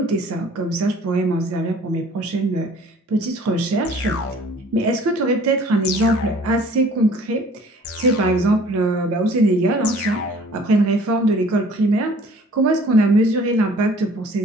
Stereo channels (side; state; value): both; normal; correlation 0.52